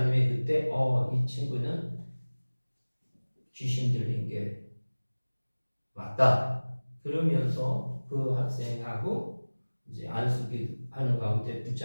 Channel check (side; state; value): both; inverted; correlation -1.00